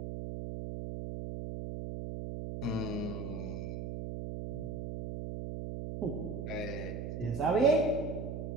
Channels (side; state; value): right; noise; hum, 5 dB below the sound